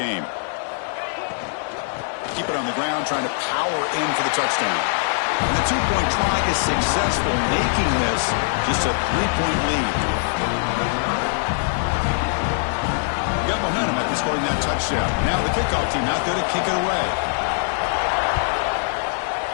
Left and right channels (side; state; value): right; silent; digital silence